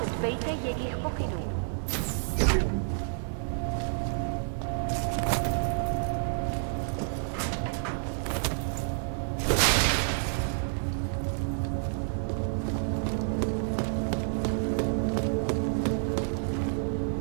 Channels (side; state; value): left; silent; digital silence